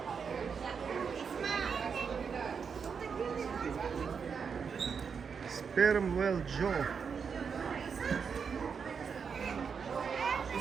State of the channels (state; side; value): quieter; left; 6.2 dB